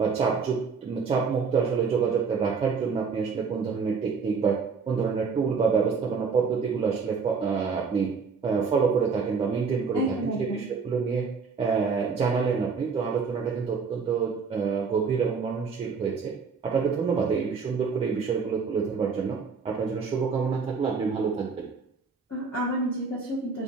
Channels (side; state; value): left; quieter; 5.2 dB